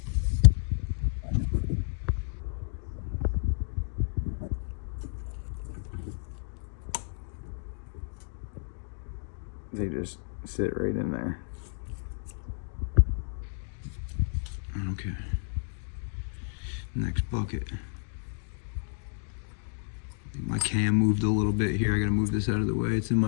They just sit right in there. Okay. Next bucket. I think my cam moved a little bit here. I gotta move this out of the way. It's in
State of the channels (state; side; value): silent; right; digital silence